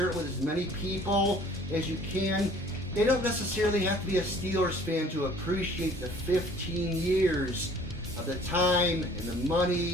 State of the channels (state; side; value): normal; both; correlation 0.53